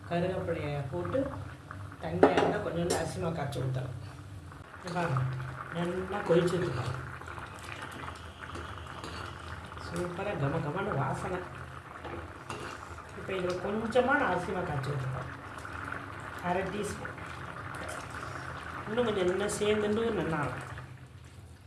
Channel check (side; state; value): both; identical; correlation 1.00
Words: கருவேப்பிலையை போட்டு தண்ணியாக இருந்தால் கொஞ்சோண்டு அரிசி மாவு கரைச்சி ஊற்றலாம். நல்லா கொதிச்சுருக்கோம். சூப்பராக கமன்னு வாசனை. இப்போ இதில் கொஞ்சமாக நான் அரிசி மாவு காய்ச்சி வச்சுருக்கேன். 1/2 டீஸ்பூன். இன்னும் கொஞ்சம் நல்லா சேர்ந்துட்டு நல்லா இருக்கும்.